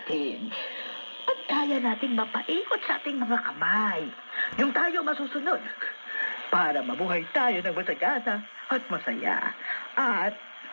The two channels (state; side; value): inverted; both; correlation -1.00